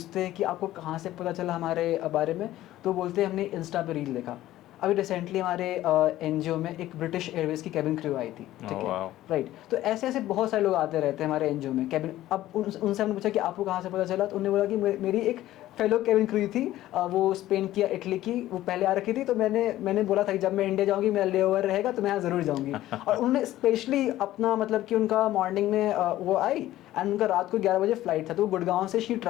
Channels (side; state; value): right; quieter; 14.6 dB